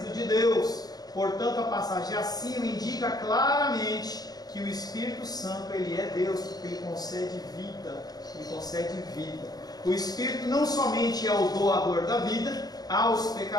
de Deus. Portanto, a passagem acima indica claramente que o Espírito Santo ele é Deus, porque ele concede vida. Ele concede vida. O Espírito não somente é o doador da vida aos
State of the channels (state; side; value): late; right; 0.19 ms